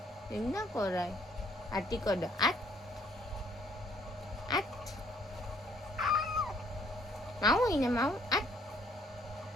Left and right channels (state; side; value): normal; both; correlation 0.64